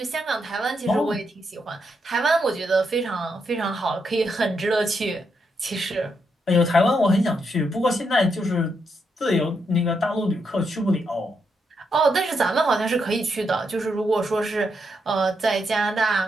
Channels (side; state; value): both; normal; correlation 0.80